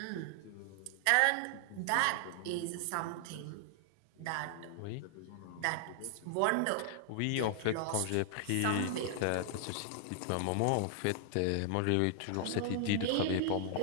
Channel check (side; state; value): both; different; correlation 0.00